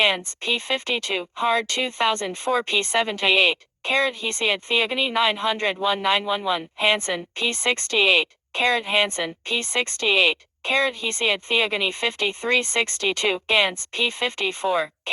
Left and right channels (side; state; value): both; identical; correlation 1.00